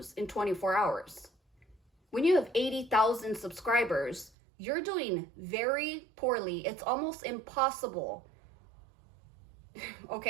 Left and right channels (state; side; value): drops out; left; at 4.3 s